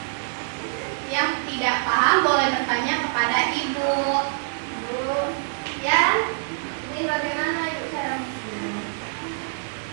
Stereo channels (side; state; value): left; silent; digital silence